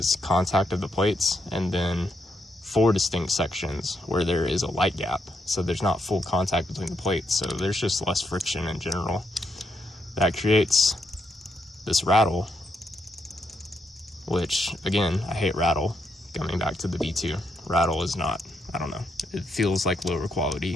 contact of the plates, and then 4 distinct sections where there is a light gap. So there's not full contact between the plates, so there's just less friction in general. That creates this rattle, which, again, I hate rattle. Coming back to the V2, rattle is not, I don't know, it feels like lower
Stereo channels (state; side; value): normal; both; correlation 0.78